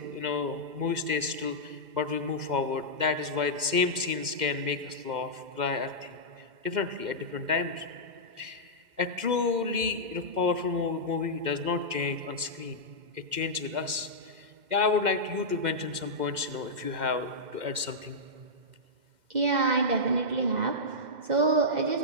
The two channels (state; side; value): late; left; 2.1 ms